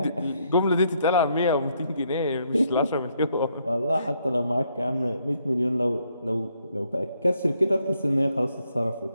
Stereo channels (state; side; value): inverted; both; correlation -0.73